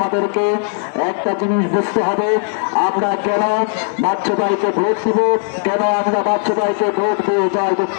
একটা জিনিস বুঝতে হবে, আমরা কেন বাচ্চু ভাইকে ভোট দিব, কেন আমরা বাচ্চু ভাইকে ভোট দিয়ে জয়যুক্ত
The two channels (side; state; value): right; silent; 63 dB below the other